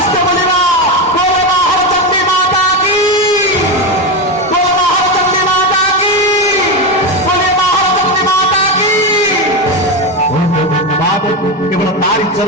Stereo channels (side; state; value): both; normal; correlation 0.14